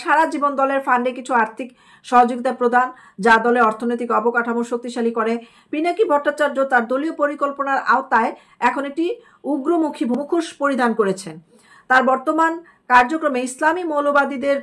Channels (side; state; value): both; identical; correlation 1.00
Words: সারা জীবন দলের ফান্ডে কিছু আর্থিক সহযোগিতা প্রদান, যা দলের অর্থনৈতিক অবকাঠামো শক্তিশালী করে। পিনাকি ভট্টাচার্য তার দলীয় পরিকল্পনার আওতায় এখন একটি উগ্রমুখী মুখোশ পরিধান করেছেন। তার বর্তমান কার্যক্রমে ইসলামী মৌলবাদীদের